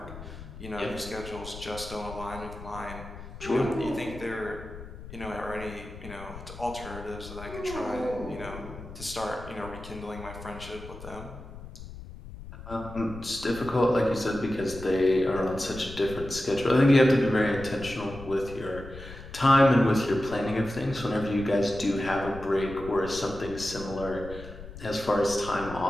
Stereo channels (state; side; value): noise; left; rumble, 13 dB below the sound